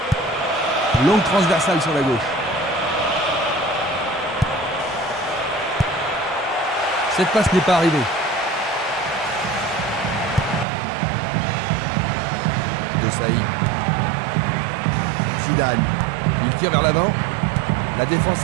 Longue transversale sur la gauche. Cette passe n'est pas arrivée. De Saïd. Zidane. Il tire vers l'avant. La défense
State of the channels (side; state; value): left; drops out; at 10.7 s